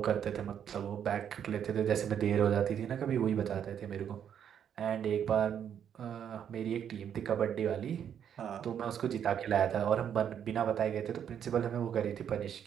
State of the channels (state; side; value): quieter; left; 8.8 dB